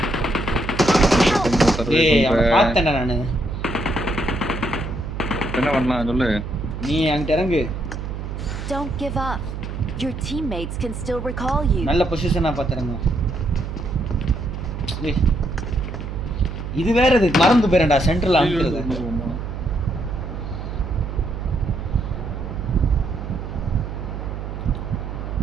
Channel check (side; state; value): right; noise; hum, 7 dB below the sound